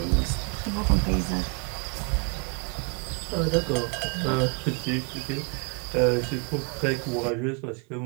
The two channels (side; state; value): left; quieter; 35.1 dB